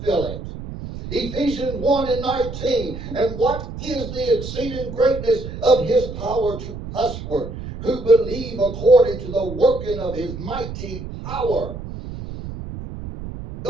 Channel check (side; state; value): right; noise; rumble, 9 dB below the sound